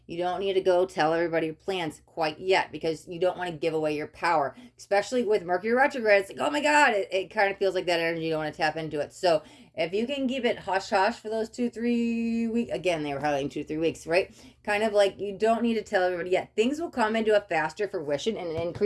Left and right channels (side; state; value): both; identical; correlation 1.00